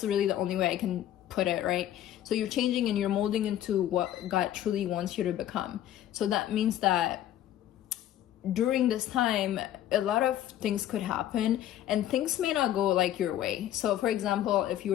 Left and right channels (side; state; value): right; quieter; 12.1 dB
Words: really the only way I can put it, right? So you're changing and you're molding into what God truly wants you to become. So that means that during this time, a lot of things could happen and things may not go like your way. So for example, if you